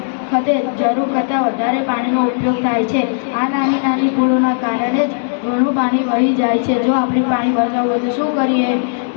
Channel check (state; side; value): silent; right; digital silence